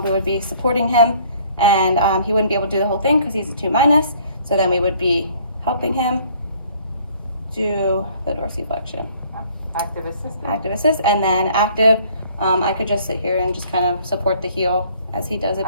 we would be supporting him, and he wouldn't be able to do the whole thing because he's a 2-. So then we would be helping him do the dorsiflexion. Active assist. Active assist, and then active. I could just sit here and just kind of support the heel as he does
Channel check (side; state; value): both; inverted; correlation -0.58